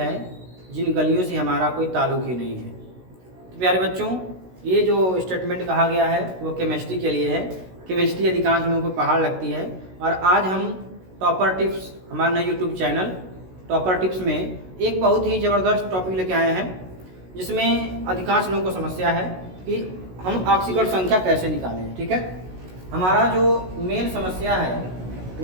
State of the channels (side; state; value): left; late; 16 ms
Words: जिन गलियों से हमारा कोई ताल्लुक़ ही नहीं है। तो प्यारे बच्चों, ये जो स्टेटमेंट कहा गया है वो केमिस्ट्री के लिए है। केमिस्ट्री अधिकांश लोगों को पहाड़ लगती है और आज हम टॉपर टिप्स, हमारा नया यूट्यूब चैनल टॉपर टिप्स में एक बहुत ही ज़बरदस्त टॉपिक लेके आए हैं, जिसमें अधिकांश लोगों को समस्या है कि हम ऑक्सीकरण संख्या कैसे निकालें। ठीक है, हमारा जो मेन समस्या है